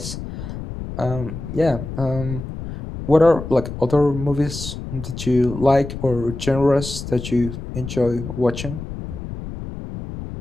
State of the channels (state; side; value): noise; left; rumble, 9 dB below the sound